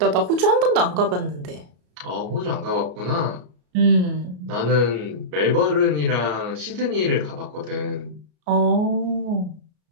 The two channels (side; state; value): left; late; 33 ms